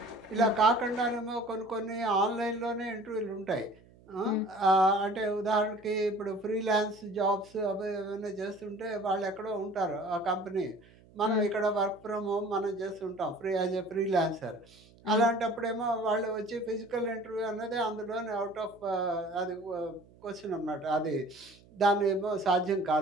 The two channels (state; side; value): noise; right; hum, 26 dB below the sound